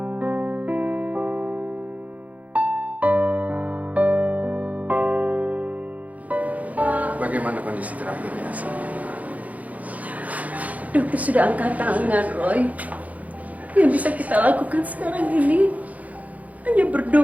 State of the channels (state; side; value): late; left; 0.073 ms